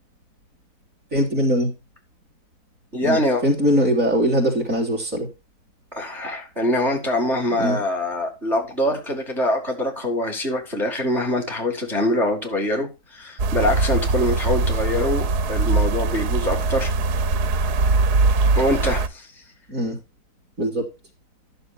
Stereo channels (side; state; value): left; late; 4.6 ms